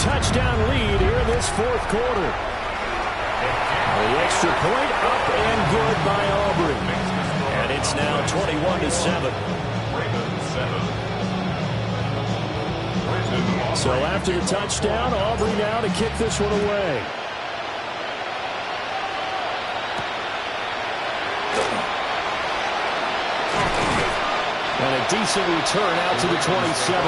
lead here in this fourth quarter. The extra point up and good by Aubrey. And it's now 21-7. So after the touchdown, Aubrey now to kick this one away. And a decent return out to the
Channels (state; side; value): identical; both; correlation 1.00